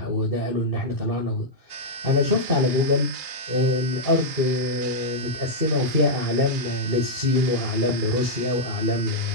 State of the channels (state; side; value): late; left; 2.8 ms